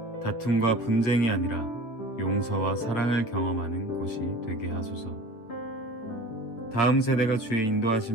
다툼과 분쟁이 아니라 용서와 사랑을 경험하는 곳이 되게 하소서. 다음 세대가 주의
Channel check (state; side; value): late; right; 8.3 ms